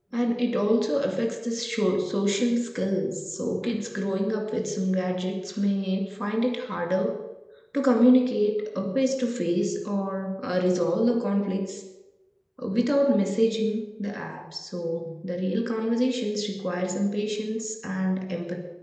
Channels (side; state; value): both; identical; correlation 1.00